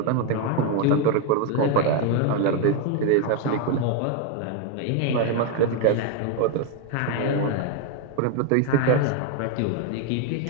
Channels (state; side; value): different; both; correlation 0.02